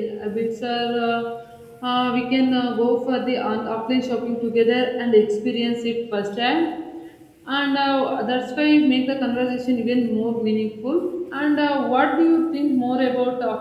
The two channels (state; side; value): identical; both; correlation 1.00